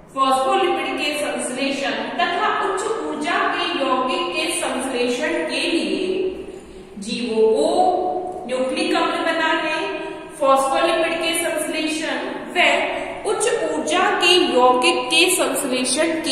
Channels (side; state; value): both; identical; correlation 1.00